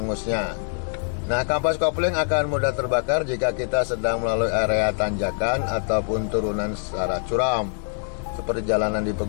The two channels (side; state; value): right; silent; digital silence